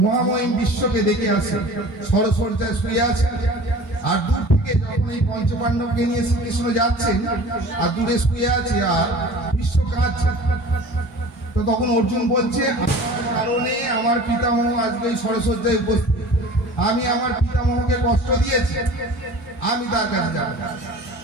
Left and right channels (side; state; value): both; normal; correlation 0.42